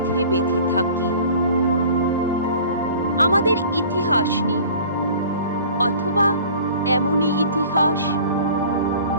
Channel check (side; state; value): both; inverted; correlation -0.46